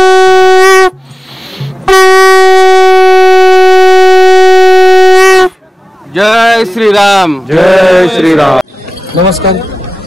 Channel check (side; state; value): both; normal; correlation 0.97